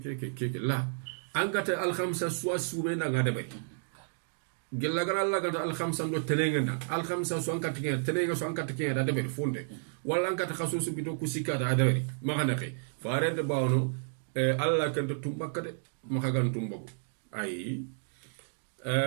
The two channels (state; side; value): silent; left; digital silence